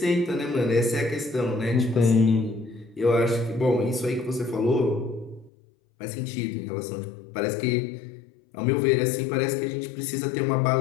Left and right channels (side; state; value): right; drops out; at 5.5 s